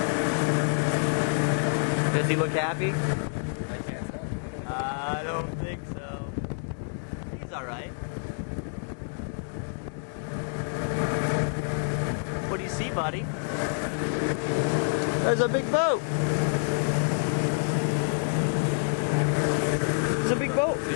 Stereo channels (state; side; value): silent; right; digital silence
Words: Does he look happy? I can't tell. I don't think so. He's alright. What do you see, buddy? There's a big boat. There's a big boat. Is